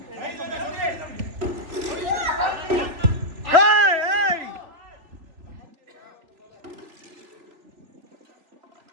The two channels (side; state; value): left; late; 3.3 ms